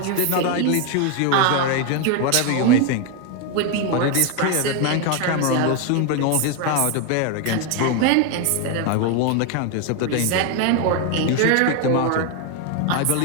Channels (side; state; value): both; different; correlation 0.01